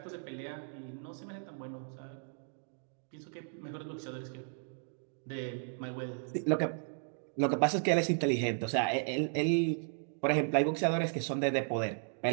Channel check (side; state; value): left; silent; digital silence